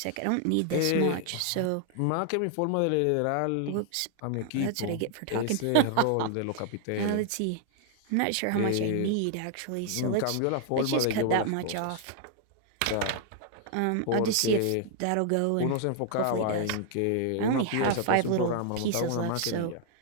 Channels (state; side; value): different; both; correlation 0.00